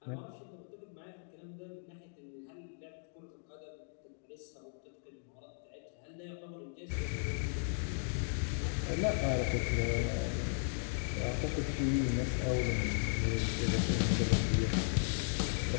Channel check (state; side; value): silent; right; digital silence